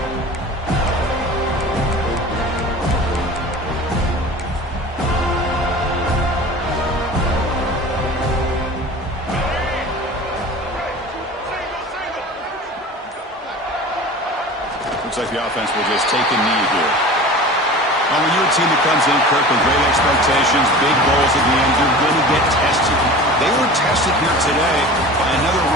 Looks like the offense will just take a knee here. Well, when you're a team that comes in, Kirk, with great expectations, big goals at the end, you're going to get tested. They were tested here today by another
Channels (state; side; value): normal; both; correlation 0.37